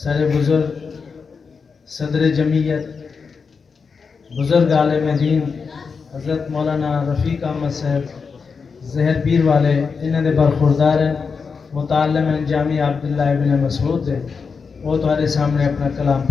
سر بزرگ صدر جمعیت بزرگ عالم دین حضرت مولانا رفیق احمد صاحب زہر پیر والے انہوں نے برخوردار ہیں، متعلم ہیں جامعہ عبداللہ ابن مسعود دے. وہ تمہارے سامنے اپنا کلام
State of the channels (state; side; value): quieter; right; 5.4 dB